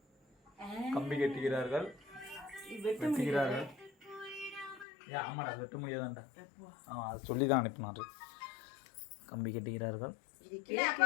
கம்பி கட்டுகிறார்கள். வெட்டுகிறார்கள். ஆமாடா வெட்ட முடியாதான்டா. அதை சொல்லி தான் அனுப்பினாரு. கம்பி கட்டுகிறார்கள்.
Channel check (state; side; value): drops out; right; at 4.9 s